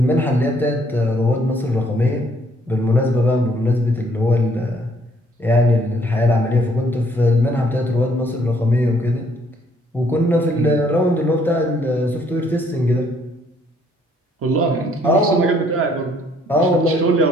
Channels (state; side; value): normal; both; correlation 0.65